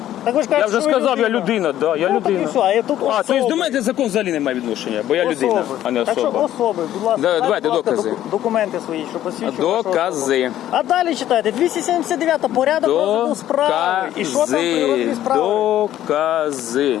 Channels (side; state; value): right; quieter; 12.5 dB